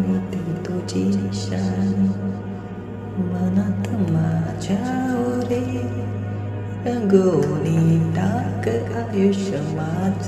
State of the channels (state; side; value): identical; both; correlation 1.00